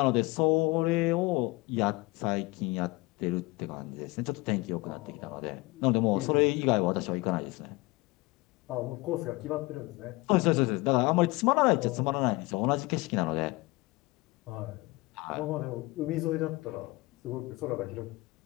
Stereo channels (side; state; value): right; quieter; 22.8 dB